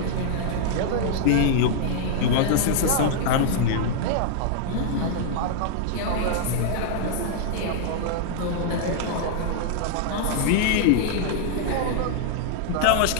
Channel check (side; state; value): both; different; correlation -0.01